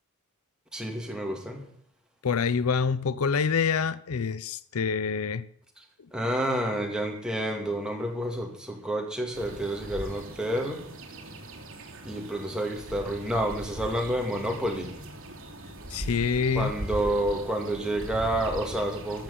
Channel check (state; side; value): normal; both; correlation 0.49